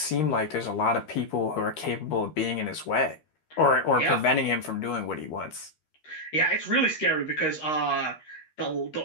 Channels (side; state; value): right; late; 13 ms